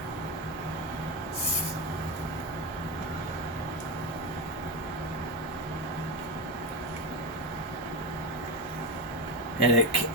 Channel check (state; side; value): normal; both; correlation 0.14